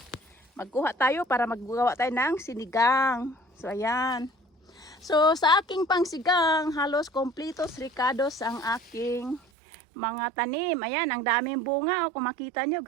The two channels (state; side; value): drops out; left; at 9.4 s